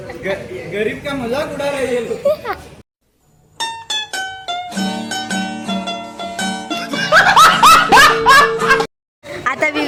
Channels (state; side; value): identical; both; correlation 1.00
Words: गरीब का मजाक उडायला येईल. आता